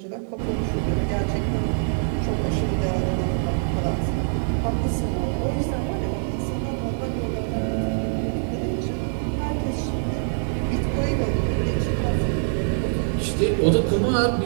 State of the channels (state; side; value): silent; left; digital silence